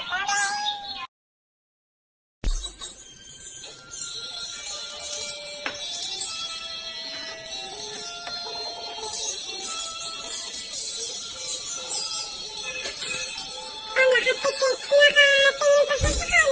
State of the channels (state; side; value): identical; both; correlation 1.00